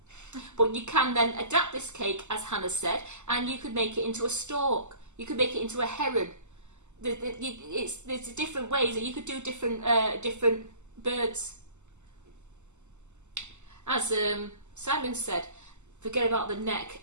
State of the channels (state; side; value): late; left; 0.83 ms